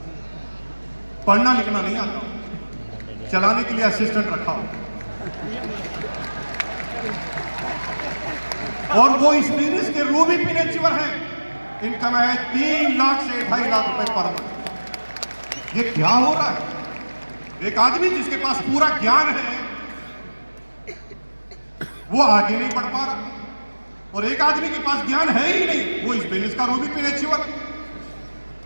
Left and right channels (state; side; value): inverted; both; correlation -1.00